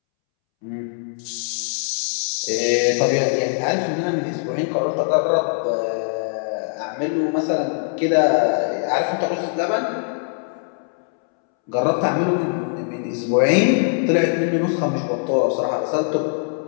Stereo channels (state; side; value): silent; right; 65 dB below the other